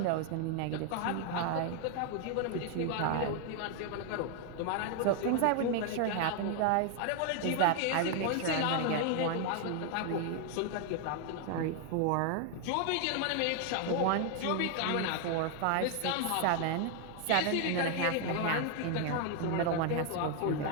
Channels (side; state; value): both; different; correlation 0.00